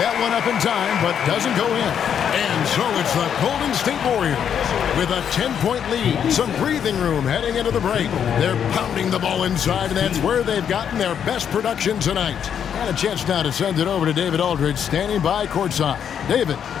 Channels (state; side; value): quieter; right; 8.4 dB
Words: one up in time, but doesn't go in. And so it's the Golden State Warriors with a 10-point lead. Some breathing room heading into the break. They're pounding the ball inside, and that's where they've gotten their best production tonight. And a chance now to send it over to David Aldridge, standing by courtside. David.